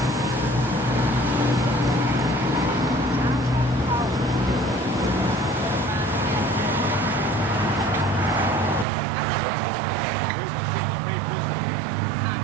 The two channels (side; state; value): left; drops out; at 8.8 s